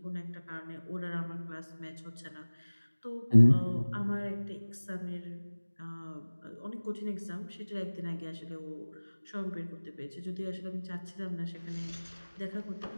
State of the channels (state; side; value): inverted; both; correlation -1.00